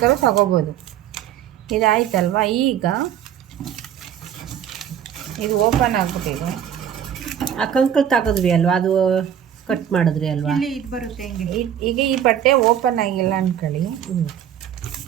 ತಗೋಬೋದು. ಇದಾಯ್ತಲ್ವ? ಈಗ ಇದು ಓಪನ್ ಆಗ್ಬಿಟ್ಟಿದೆ. ಆ ಕಂಕಲ್ ತಗೋದ್ವಿ ಅಲ್ವಾ, ಅದು ಕಟ್ ಮಾಡಿದ್ರಿ ಅಲ್ವಾ, ಇದು ಬರುತ್ತೆ ಹಿಂಗೆ. ಈಗ ಈ ಬಟ್ಟೆ ಓಪನ್ ಆಗಿಲ್ಲ ಅಂದ್ಕೊಳ್ಳಿ,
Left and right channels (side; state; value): left; quieter; 9.6 dB